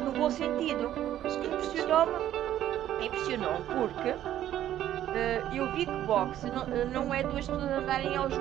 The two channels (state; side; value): quieter; left; 12.1 dB